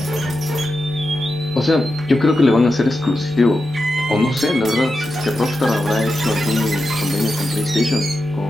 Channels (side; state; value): both; normal; correlation 0.89